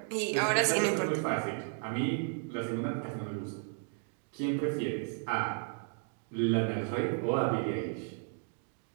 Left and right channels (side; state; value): left; silent; 55 dB below the other